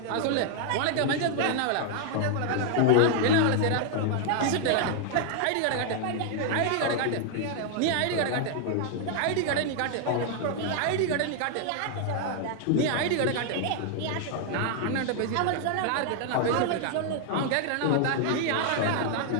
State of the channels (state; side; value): different; both; correlation 0.00